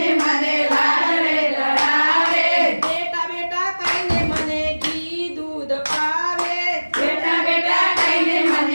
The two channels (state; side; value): inverted; both; correlation -1.00